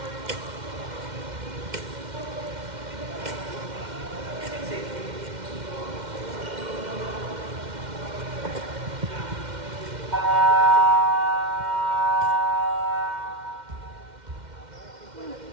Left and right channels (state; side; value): late; left; 2.1 ms